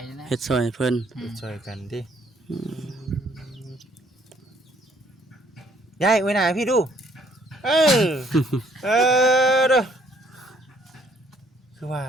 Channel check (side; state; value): both; normal; correlation 0.64